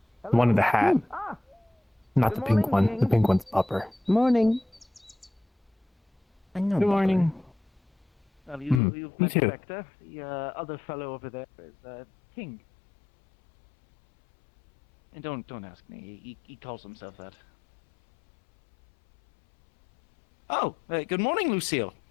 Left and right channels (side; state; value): right; drops out; at 8.8 s